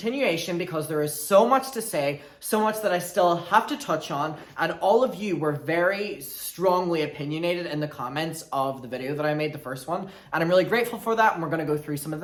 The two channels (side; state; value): both; identical; correlation 1.00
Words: because there is so much to say, so much that I still have to touch on, and all of you were very strongly opinionated in the comments of the video that I made, the first one, and I'm really grateful for that, and we're going to go through some of